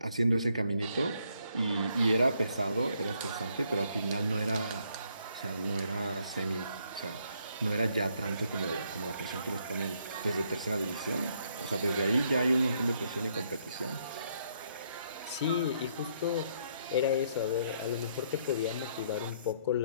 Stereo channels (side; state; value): both; inverted; correlation -0.71